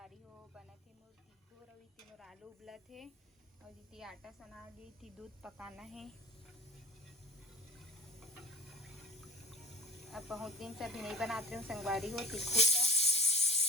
हो बना थे मोर तिखुर और इतने मोर आलू उबला थे और इतनी आटा सना ली थी, दूध पकाना है। अब बहुत दिन से अभी नहीं बनाते हूँ संगवारी हो तिखुर का।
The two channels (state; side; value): normal; both; correlation 0.40